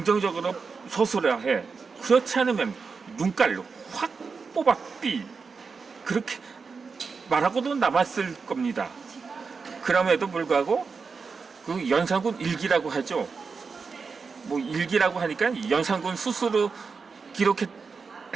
서술해야 해. 그렇지 않으면 눈깔로 확 뽑아 삐, 그렇게 말하고도 남았을 겁니다. 그럼에도 불구하고 그 연산군 일기라고 하죠. 뭐 일기라고 하니까 연산군 스스로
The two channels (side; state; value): left; quieter; 5.0 dB